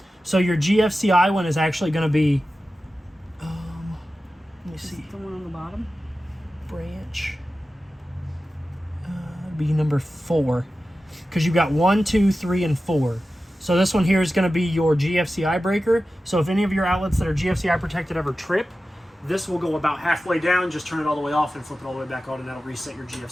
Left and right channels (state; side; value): normal; both; correlation 0.94